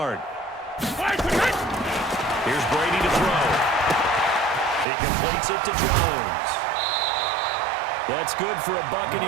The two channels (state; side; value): drops out; left; at 4.9 s